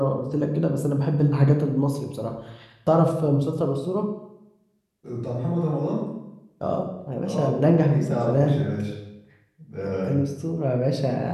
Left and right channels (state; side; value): identical; both; correlation 1.00